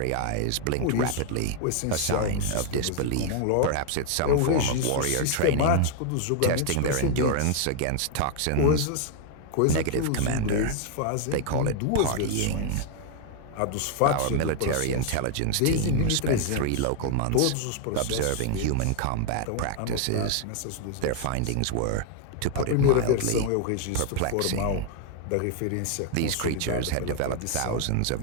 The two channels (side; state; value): both; different; correlation 0.00